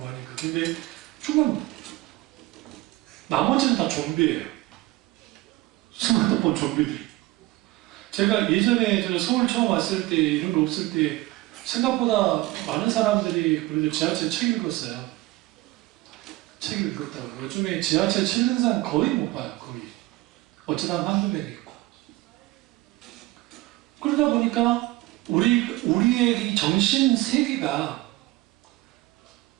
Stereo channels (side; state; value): left; quieter; 19.0 dB